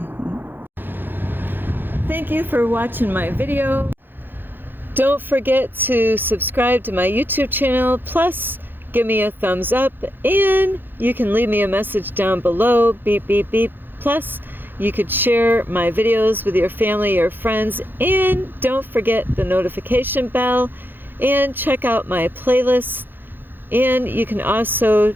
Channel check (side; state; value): left; late; 0.097 ms